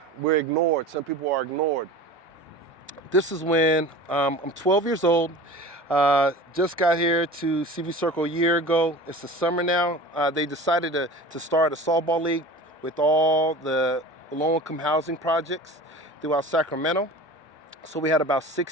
we're ignored. Some people are ignored. This is when I'm 12 years old. Just got here to CV Circle a year ago. It's the summer now. They decided to start a softball league with all the low-income housing projects throughout Sacramento. So we had about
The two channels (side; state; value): both; normal; correlation 0.37